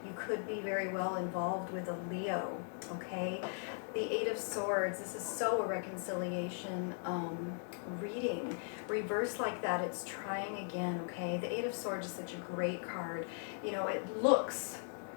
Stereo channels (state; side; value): silent; right; 52 dB below the other